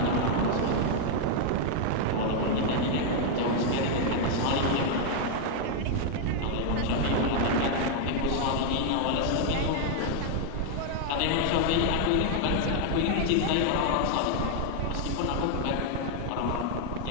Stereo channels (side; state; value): both; different; correlation 0.00